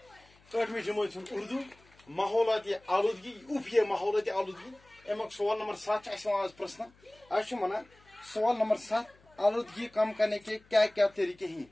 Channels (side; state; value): left; noise; hum, 29 dB below the sound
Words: 8ویں جماعت اردو ماحولیاتی آلودگی اوپیے ماحولیاتی آلودگی امیک سوال نمبر 7 آج پرسن اچھا ونان سوال نمبر 7 آلودگی کم کرنے کے کیا کیا طریقے ہیں